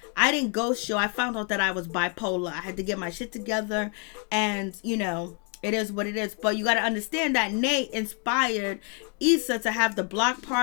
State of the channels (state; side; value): quieter; right; 37.6 dB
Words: I didn't ghost you. I found out that I was bipolar. I had to get my shit together, and it is what it is. But you got to understand that Nate inspired Issa to have the block